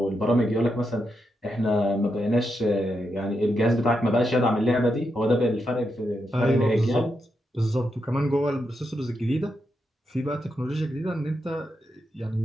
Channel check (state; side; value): normal; both; correlation 0.84